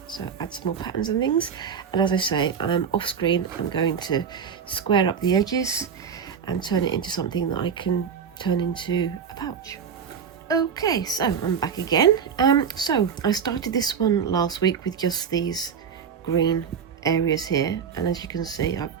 So add some more patterns and things, and as I say, off screen I'm going to square up the edges and turn it into something that I can turn into a pouch. Okay, so I'm back again. So I started this one last week with just these green areas here, and as you can see, I've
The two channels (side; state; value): left; quieter; 7.0 dB